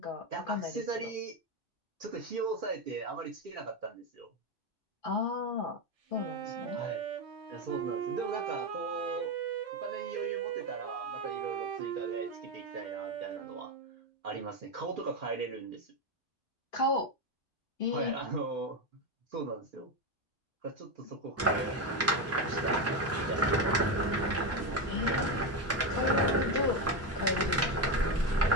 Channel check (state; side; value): normal; both; correlation 0.12